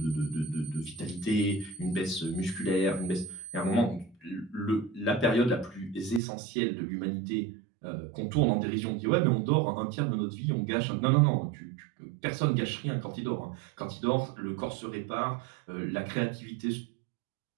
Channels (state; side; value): drops out; left; at 6.2 s